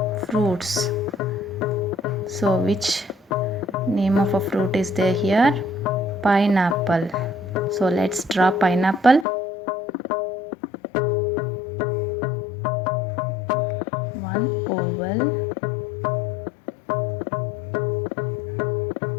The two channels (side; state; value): right; drops out; at 9.2 s